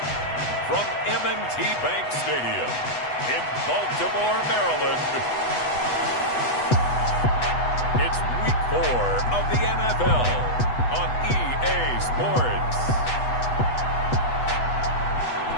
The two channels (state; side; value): late; right; 8.1 ms